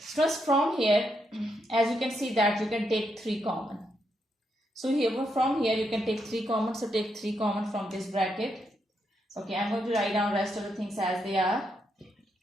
from here, as you can see that you can take 3 common. So here from here you can take 3 common. So take 3 common from this bracket. Okay, I'm going to write down rest of the things as they are.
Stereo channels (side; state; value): both; normal; correlation 0.80